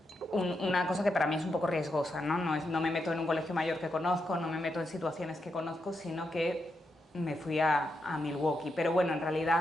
una cosa que para mí es un poco riesgosa, ¿no? No me meto en un colegio mayor que conozco, no me meto en situaciones que conozco, sino que me fui a Milwaukee. Pero bueno, en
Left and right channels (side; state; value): both; normal; correlation 0.84